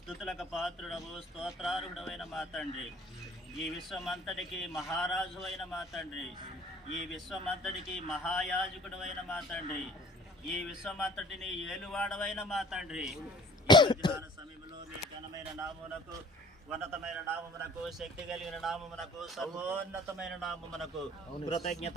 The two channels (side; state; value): both; normal; correlation 0.50